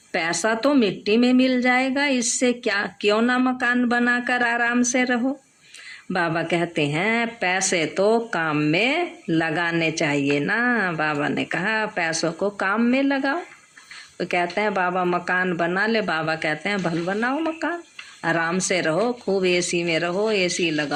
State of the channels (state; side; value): identical; both; correlation 1.00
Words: पैसा तो मिट्टी में मिल जाएगा, इससे क्या, क्यों ना मकान बनाकर आराम से रहो। बाबा कहते हैं पैसे तो काम में लगाने चाहिए ना। बाबा ने कहा पैसों को काम में लगाओ। तो कहते हैं बाबा मकान बना ले, बाबा कहते हैं भल बनाओ मकान, आराम से रहो, खूब एसी में रहो, एसी